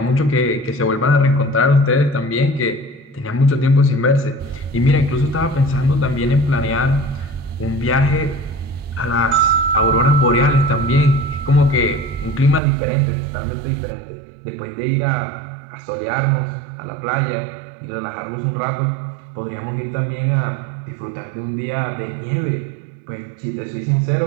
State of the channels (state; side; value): drops out; left; at 12.6 s